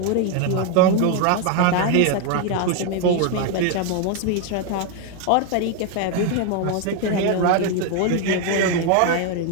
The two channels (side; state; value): both; different; correlation 0.01